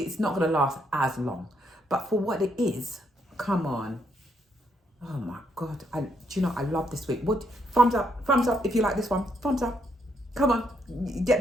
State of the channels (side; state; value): both; normal; correlation 0.75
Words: not going to last as long. But for what it is, come on. Oh my God. Do you know, I love this wig. Thumbs up if you like this one. Thumbs up. Come on, get